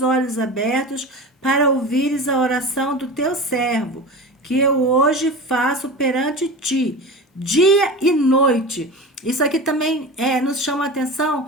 olhos abertos para ouvires a oração do teu servo, que eu hoje faço perante ti, dia e noite. Isso aqui também nos chama a atenção,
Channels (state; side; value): normal; both; correlation 0.30